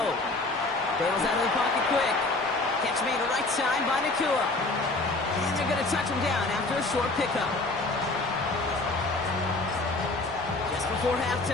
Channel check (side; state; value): right; quieter; 3.1 dB